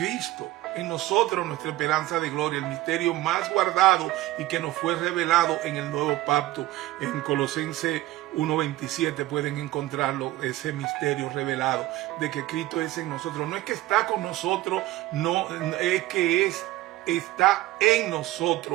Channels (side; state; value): left; quieter; 16.5 dB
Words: en nosotros, nuestra esperanza de gloria, el misterio más guardado y que nos fue revelado en el nuevo pacto. En Colosenses 1:27 pueden encontrarlo, ese misterio revelado de que Cristo es en nosotros. No es que está con nosotros, no es que está en